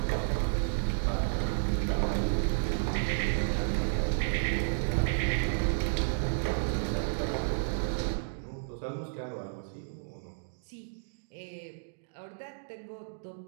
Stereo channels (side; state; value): left; silent; digital silence